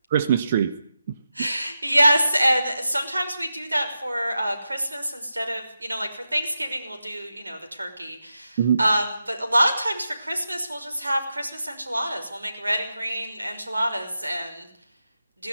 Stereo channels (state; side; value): inverted; both; correlation -0.89